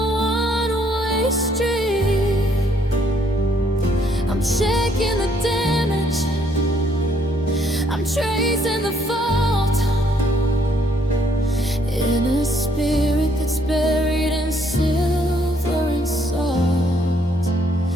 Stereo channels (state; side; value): normal; both; correlation 0.68